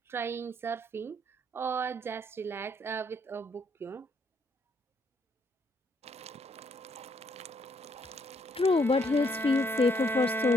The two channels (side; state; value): both; normal; correlation 0.70